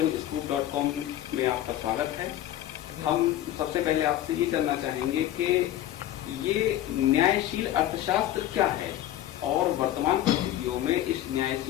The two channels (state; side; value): quieter; right; 12.8 dB